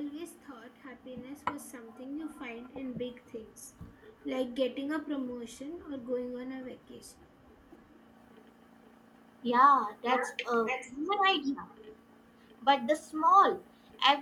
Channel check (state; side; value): identical; both; correlation 1.00